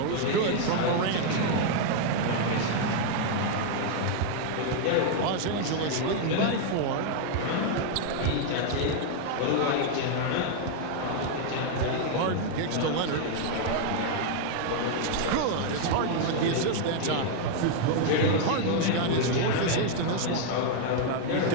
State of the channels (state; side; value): different; both; correlation 0.00